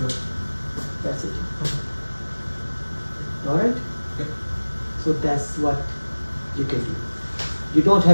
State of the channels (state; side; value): inverted; both; correlation -1.00